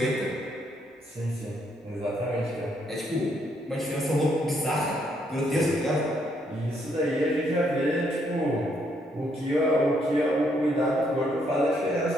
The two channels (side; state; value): both; normal; correlation 0.73